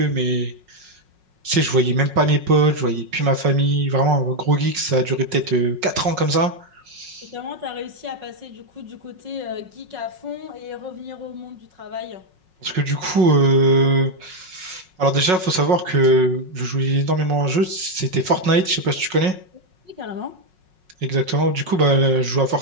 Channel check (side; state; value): left; late; 5.4 ms